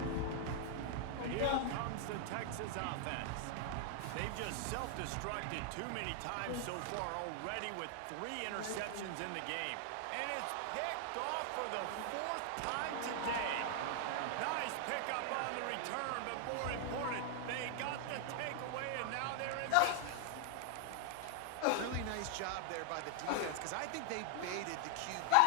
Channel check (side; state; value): both; different; correlation 0.00